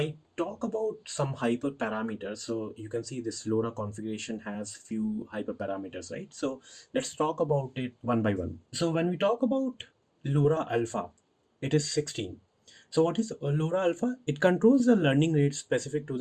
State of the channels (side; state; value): both; identical; correlation 1.00